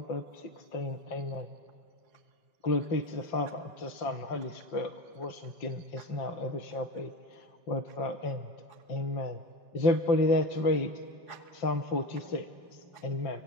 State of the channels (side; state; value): right; late; 5.8 ms